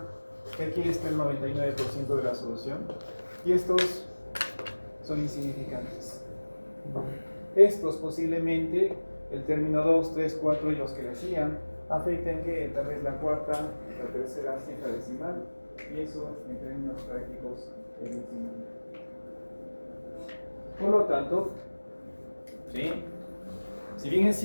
que aquí está el 99% de la solución y estos son insignificantes. Estos posiblemente, el término 2, 3, 4 y los que le sigan, afecten que tal vez la cuarta, la tercera cifra decimal, y eso en términos prácticos es insignificante. Por lo tanto, ¿sí? Si bien es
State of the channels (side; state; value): both; inverted; correlation -1.00